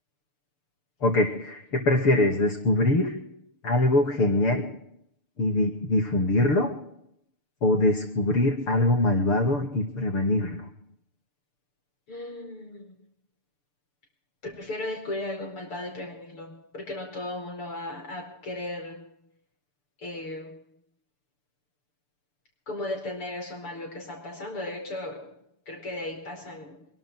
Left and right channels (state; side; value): late; right; 6.8 ms